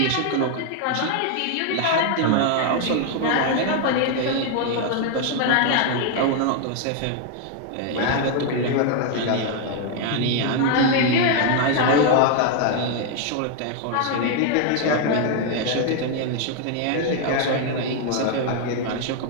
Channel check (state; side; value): different; both; correlation 0.01